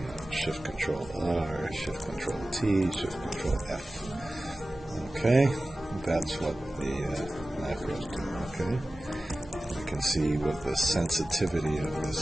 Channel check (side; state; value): both; normal; correlation 0.96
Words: then Shift Control R, Shift Control T, Shift Control F. Okay, that's what the macros do. Okay, we can see what the sensitivity of